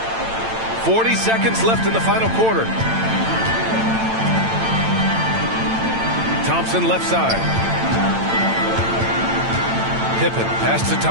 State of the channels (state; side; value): late; left; 8.9 ms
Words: 40 seconds left in the final quarter. Thompson left side. Pippen pass to